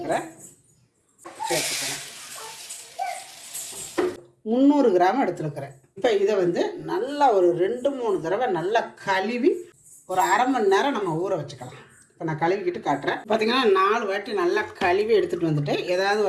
சேர்த்துக்கிறேன். 300 கிராம் எடுத்துருக்கிறேன். இப்போ இதை வந்து நல்லா ஒரு 2-3 தடவை நல்லா கழுவி ஒரு அரை மணி நேரம் நம்ம ஊற வச்சுக்கலாம். இப்போ நான் கழுவிக்கிட்டு காட்டுறேன். பார்த்திங்கன்னா 4 வாட்டி நல்லா கழுவி எடுத்துகிட்டு வந்துட்டு, ஏதாவது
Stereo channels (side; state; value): both; identical; correlation 1.00